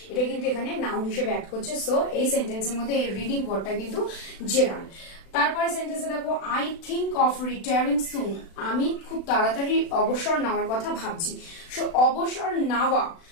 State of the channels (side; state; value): right; late; 36 ms